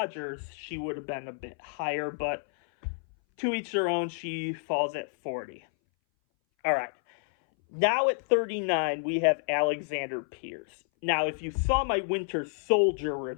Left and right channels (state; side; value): silent; right; 58 dB below the other